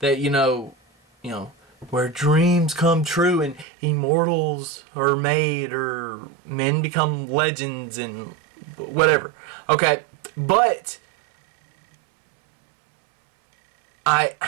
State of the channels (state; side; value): drops out; left; at 3.7 s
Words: you know, where dreams come true and immortals are made or men become legends and whatever. Okay, but I